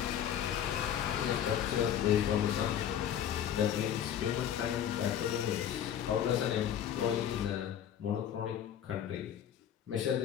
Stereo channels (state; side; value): quieter; right; 9.8 dB